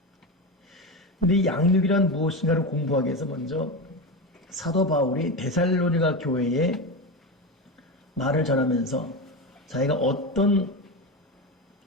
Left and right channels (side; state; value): both; normal; correlation 0.19